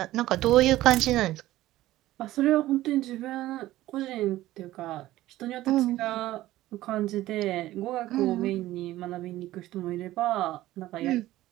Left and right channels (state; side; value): quieter; left; 15.7 dB